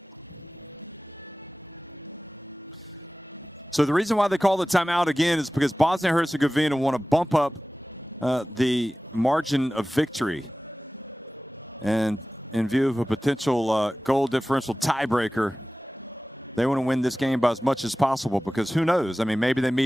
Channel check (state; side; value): normal; both; correlation 0.96